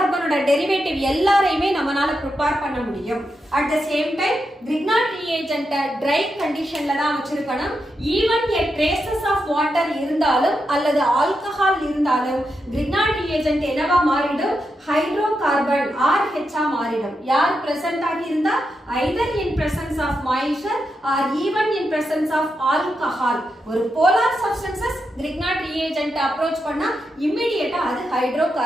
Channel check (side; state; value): both; normal; correlation 0.85